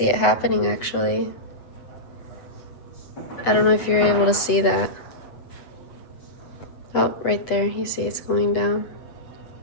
it happening actually. I don't know if you're able to see that. Oh, right there. You see it's going down.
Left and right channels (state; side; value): late; right; 8.0 ms